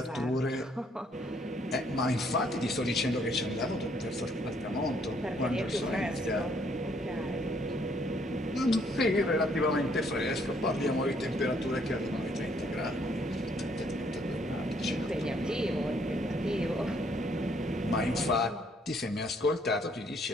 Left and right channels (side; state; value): both; normal; correlation 0.67